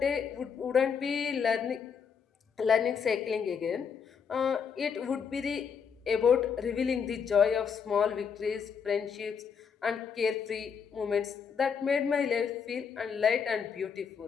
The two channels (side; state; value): right; quieter; 6.6 dB